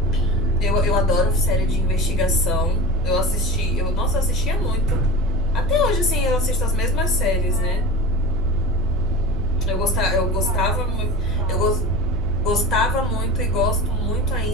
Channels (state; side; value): noise; right; hum, 6 dB below the sound